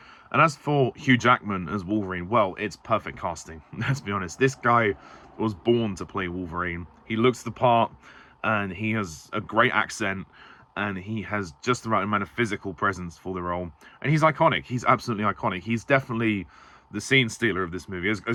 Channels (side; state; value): both; identical; correlation 1.00